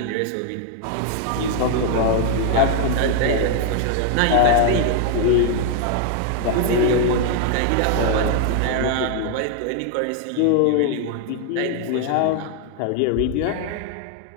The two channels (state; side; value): different; both; correlation 0.00